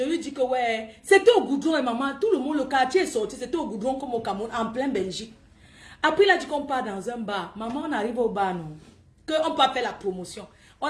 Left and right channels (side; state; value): both; identical; correlation 1.00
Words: lui dis que ouais, c'était au goudron et maman, tout le monde, le quartier est sorti, c'était au goudron comme au Cameroun, en plein Belgique. Après, il a dit qu'on part dans un bar. Maman, on arrive au bar, non? Qu'on peut faire la promotion.